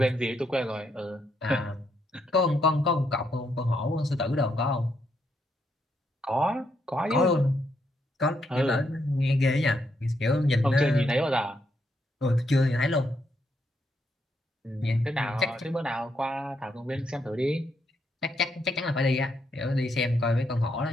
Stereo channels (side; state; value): both; normal; correlation 0.78